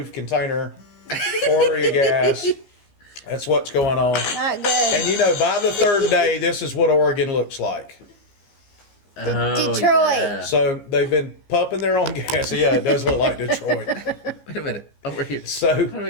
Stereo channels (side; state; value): right; late; 15 ms